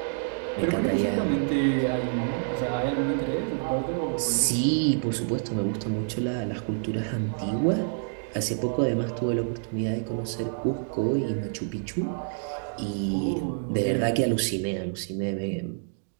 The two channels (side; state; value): left; silent; digital silence